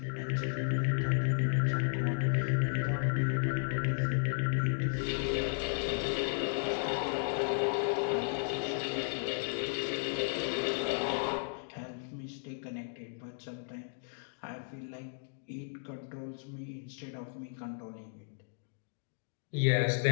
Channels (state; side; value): silent; right; digital silence